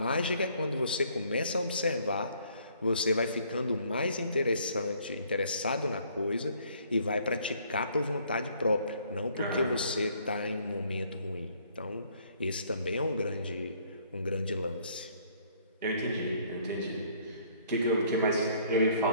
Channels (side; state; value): both; inverted; correlation -0.62